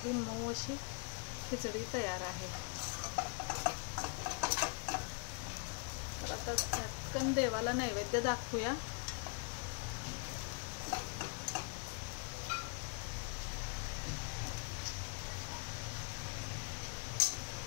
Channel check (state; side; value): quieter; right; 37.8 dB